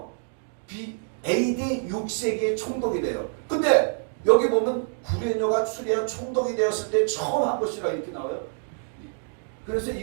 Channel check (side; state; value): left; silent; digital silence